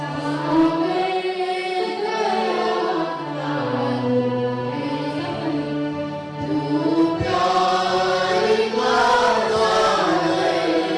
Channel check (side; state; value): both; identical; correlation 1.00